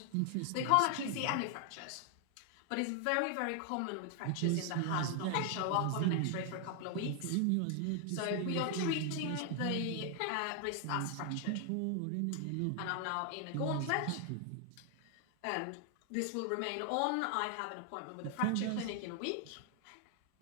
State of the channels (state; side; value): different; both; correlation 0.00